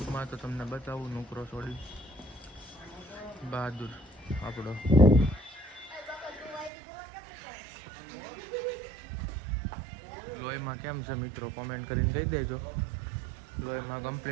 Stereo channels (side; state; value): left; drops out; at 6.7 s